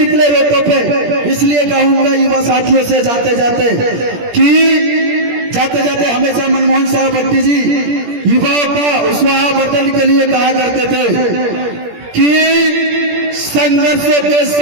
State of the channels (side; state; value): left; late; 17 ms